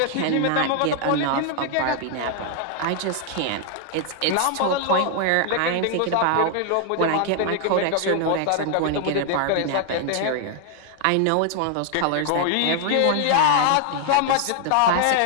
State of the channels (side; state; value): both; different; correlation 0.00